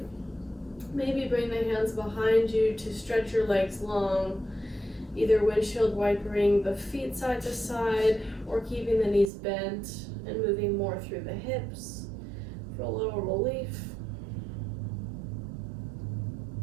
Maybe bring the hands behind you to stretch your legs long, either windshield wipering the feet side to side or keeping the knees bent and moving more through the hips for a little relief.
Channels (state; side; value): drops out; left; at 9.3 s